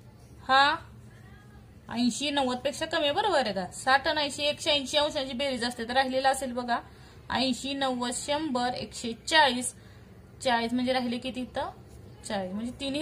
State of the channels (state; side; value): identical; both; correlation 1.00